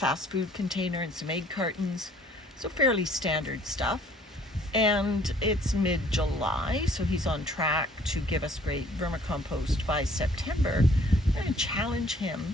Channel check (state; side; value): normal; both; correlation 0.58